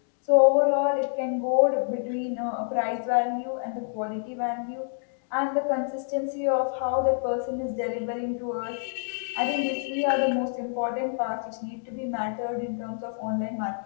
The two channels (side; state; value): right; silent; digital silence